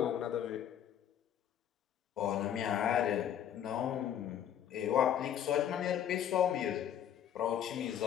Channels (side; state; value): right; quieter; 10.0 dB